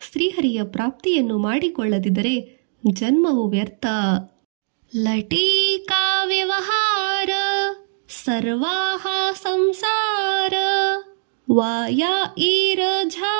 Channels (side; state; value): left; silent; digital silence